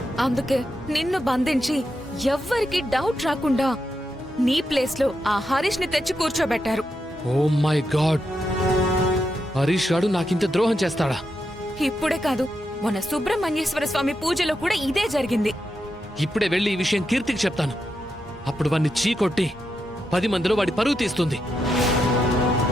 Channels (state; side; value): normal; both; correlation 0.85